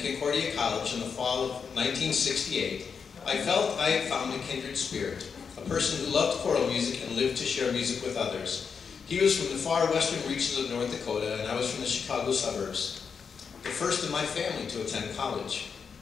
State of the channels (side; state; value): right; quieter; 6.1 dB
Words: Concordia College in the fall of 1968, I felt I had found a kindred spirit, a person who loved choral music and lived to share music with others. He was from the far western reaches of North Dakota, and I was from the Chicago suburbs, the first in my family to attend college.